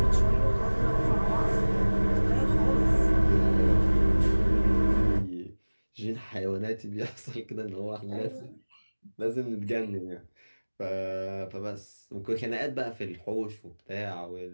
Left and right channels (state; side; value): inverted; both; correlation -1.00